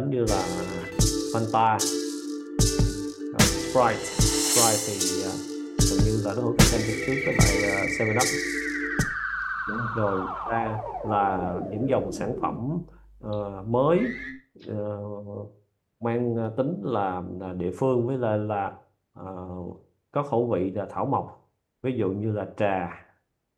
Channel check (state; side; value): identical; both; correlation 1.00